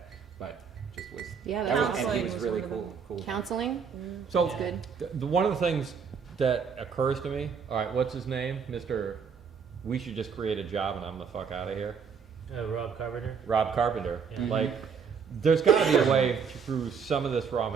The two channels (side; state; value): left; quieter; 6.3 dB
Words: But just was, Yeah, that that's was, and awesome. he was Was really one of them. cool. Counseling? So That's good. one of the things that occurs to me, all right, what's his name? Mr. We should just create a job and I'm the fuck out of here. Rob Carpenter. Rob Carpenter. Yeah. Like, there's got to be a way through some of this raw